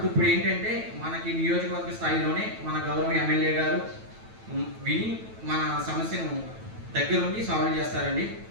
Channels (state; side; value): late; left; 9.1 ms